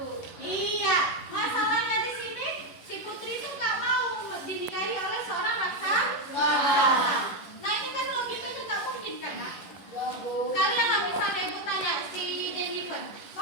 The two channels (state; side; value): late; right; 11 ms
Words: Iya, masalahnya di sini si putri itu nggak mau dinikahi oleh seorang raksasa. Nah ini kan logikanya nggak mungkin kan, Nak? Kalian lah misalnya ibu tanya si Jennifer,